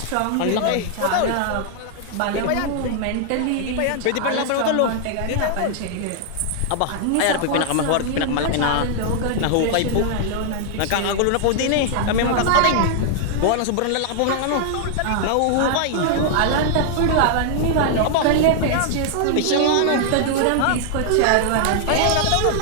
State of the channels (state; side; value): different; both; correlation -0.01